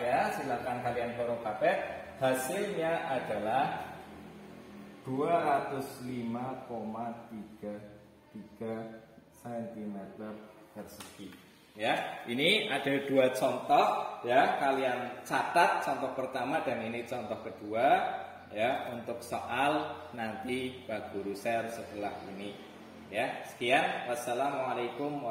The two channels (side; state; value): both; identical; correlation 1.00